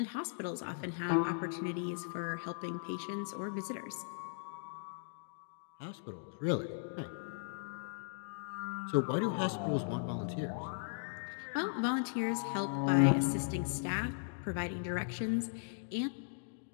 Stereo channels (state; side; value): silent; right; digital silence